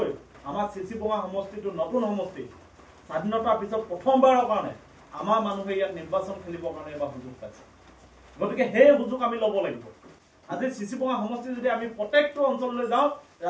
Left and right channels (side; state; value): both; identical; correlation 1.00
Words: আমাৰ চিচিবঙা সমষ্টিটো নতুন সমষ্টি স্বাধীনতাৰ পিছত প্ৰথমবাৰৰ কাৰণে আমাৰ মানুহে ইয়াত নিৰ্বাচন খেলিবৰ কাৰণে এবাৰ সুযোগ পাইছে গতিকে সেই সুযোগ আমি ল'ব লাগিব আজি চিচিবঙা সমষ্টি যদি আমি প্ৰত্যেকটো অঞ্চললৈ যাওঁ